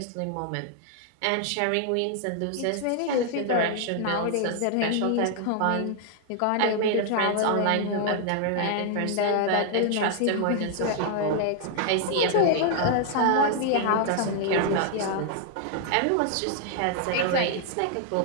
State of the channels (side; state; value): both; different; correlation 0.00